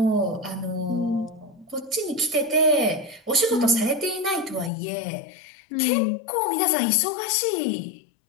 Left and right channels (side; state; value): right; drops out; at 4.7 s